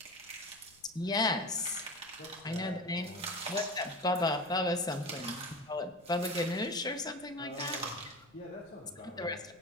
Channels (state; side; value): noise; left; rumble, 30 dB below the sound